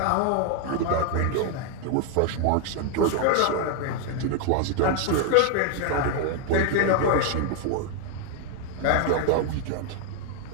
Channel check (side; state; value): both; different; correlation 0.00